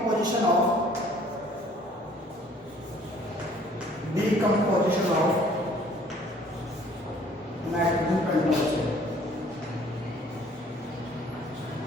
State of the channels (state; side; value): normal; both; correlation 0.56